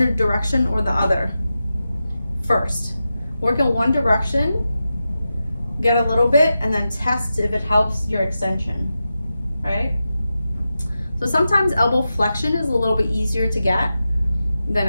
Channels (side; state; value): both; inverted; correlation -0.91